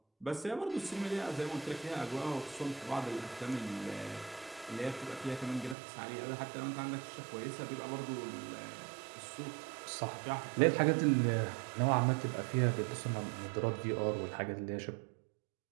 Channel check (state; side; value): drops out; left; at 5.8 s